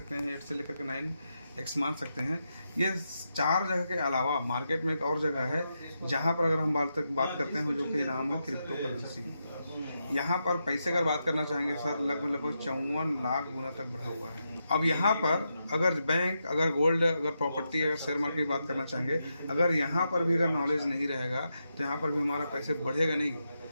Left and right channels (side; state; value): both; inverted; correlation -0.85